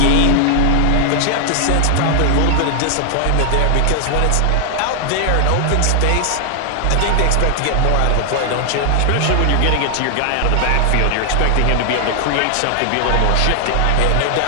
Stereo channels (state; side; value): different; both; correlation 0.00